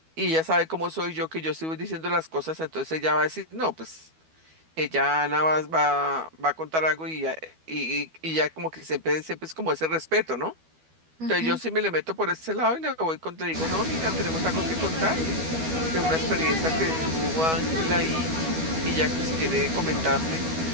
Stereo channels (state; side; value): late; left; 12 ms